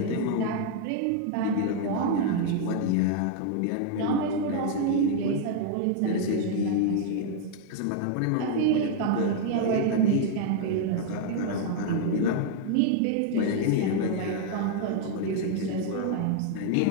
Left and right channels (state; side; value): different; both; correlation 0.00